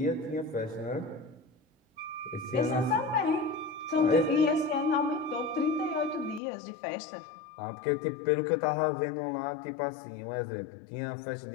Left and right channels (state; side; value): drops out; right; at 6.4 s